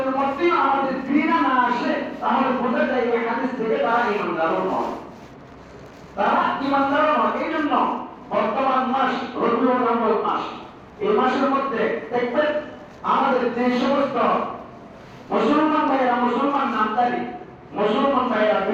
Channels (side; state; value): both; identical; correlation 1.00